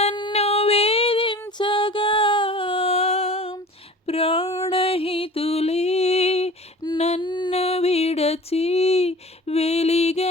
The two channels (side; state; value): both; normal; correlation 0.41